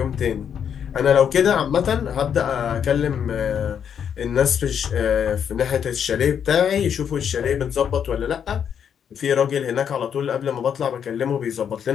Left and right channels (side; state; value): right; quieter; 8.1 dB